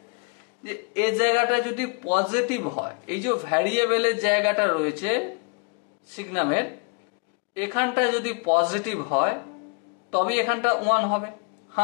যে এই জায়গাটা যদি পজিটিভ হয়, এই যে ভ্যারিয়েবলের জায়গাটা রয়েছে সিগনামের, এখানটা যদি পজিটিভ হয় তবে এখানটা 1 হবে।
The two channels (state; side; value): quieter; right; 34.1 dB